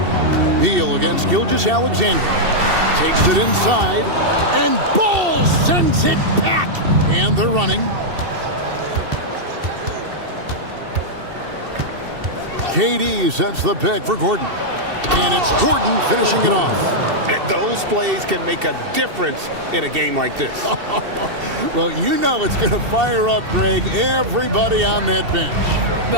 Beal against Gilgeous-Alexander. Takes it inside, and Ball sends it back. And they're running. KD sets the pick for Gordon. And it's Gordon finishing it off. Those plays can make a difference in a game like this. Well, you know it's going to fire up, Greg, everybody on that bench.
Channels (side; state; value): left; late; 2.7 ms